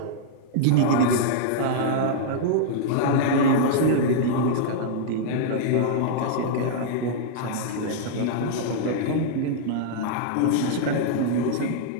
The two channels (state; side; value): different; both; correlation -0.01